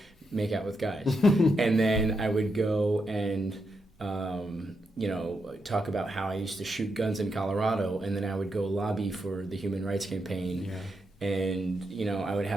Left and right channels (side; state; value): both; normal; correlation 0.83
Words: make out with guys, and then I would go and talk about how I used to shoot guns in Colorado, and then I would go lobby for the Human Rights Campaign. And, you know, I would